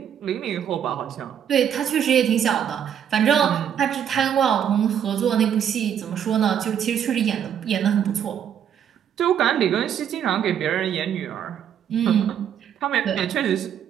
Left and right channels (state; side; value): quieter; left; 9.0 dB